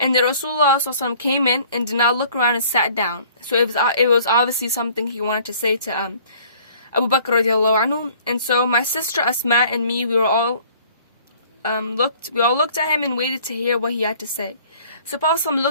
the Rasulullah ﷺ came in and did not look around and sat down. So it was obviously something he wanted to say to Abu Bakr radiallahu anhu. And so my sister Asma and me, we all looked at him and waited to hear what he had to say. So Prophet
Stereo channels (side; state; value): both; inverted; correlation -0.54